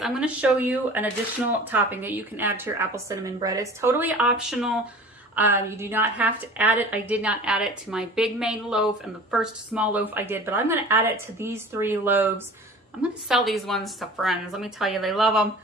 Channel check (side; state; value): both; normal; correlation 0.42